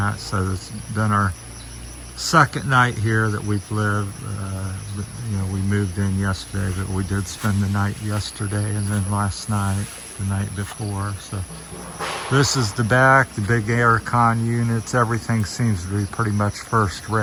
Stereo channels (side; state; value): both; identical; correlation 1.00